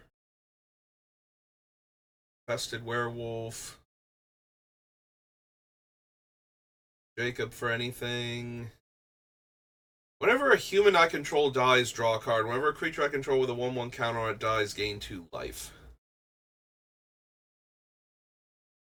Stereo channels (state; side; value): identical; both; correlation 1.00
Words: Infested Werewolf. Jacob for anything. Whenever a human I control dies, draw a card. Whenever a creature I control with a 1/1 counter on it dies, gain 2 life.